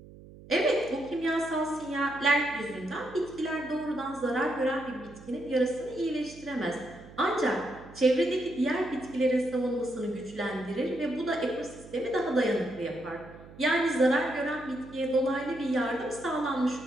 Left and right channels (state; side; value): noise; right; hum, 19 dB below the sound